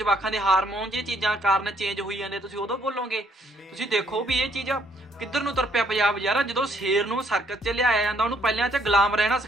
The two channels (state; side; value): normal; both; correlation 0.68